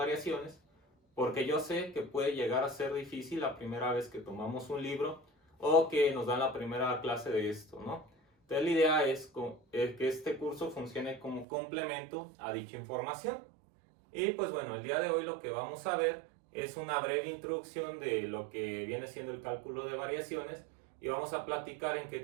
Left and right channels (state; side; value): drops out; left; at 11.5 s